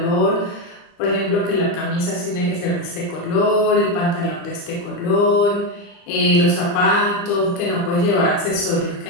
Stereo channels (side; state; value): right; late; 35 ms